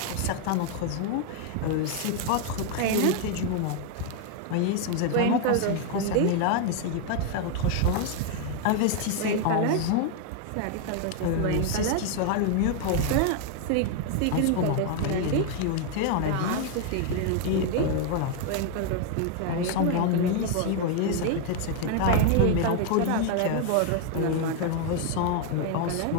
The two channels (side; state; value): both; different; correlation 0.00